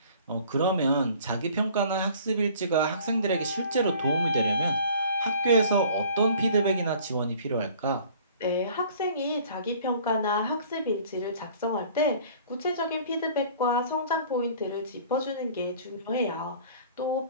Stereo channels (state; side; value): inverted; both; correlation -0.50